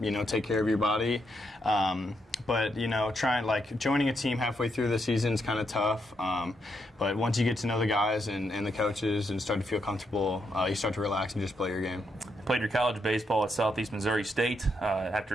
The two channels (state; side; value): normal; both; correlation 0.79